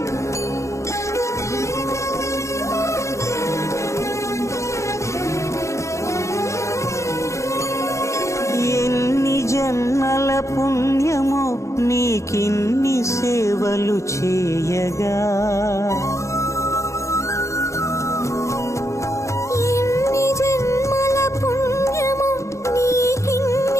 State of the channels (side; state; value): right; late; 0.14 ms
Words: ఎన్ని జన్మల పుణ్యమో నీకిన్ని సేవలు చేయగా ఎన్ని జన్మల పుణ్యమో